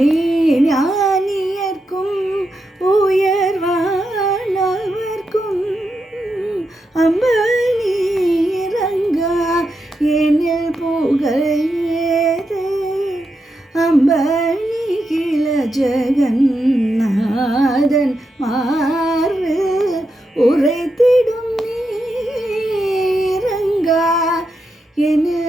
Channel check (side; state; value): both; normal; correlation 0.85